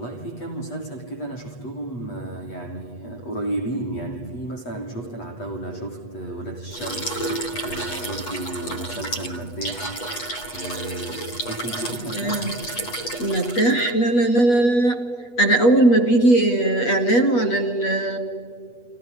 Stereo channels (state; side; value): late; right; 8.3 ms